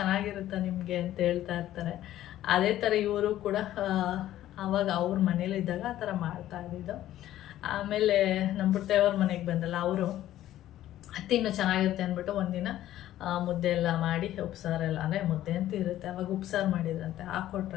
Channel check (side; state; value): right; quieter; 13.3 dB